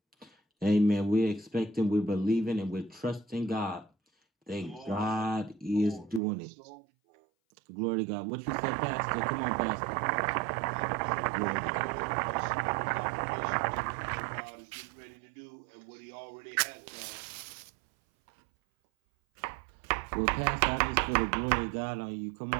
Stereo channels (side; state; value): left; drops out; at 6.2 s